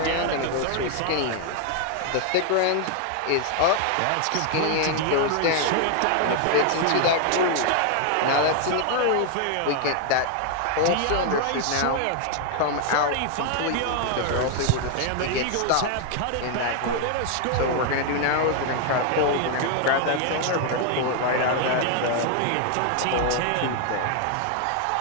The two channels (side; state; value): both; different; correlation 0.00